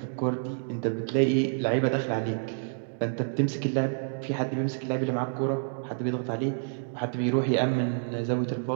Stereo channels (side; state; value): left; silent; digital silence